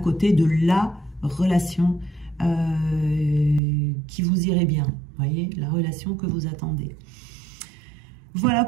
de la relation qui vous irait bien. Vous voyez, la relation que vous attendez. Voilà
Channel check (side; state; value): left; drops out; at 3.6 s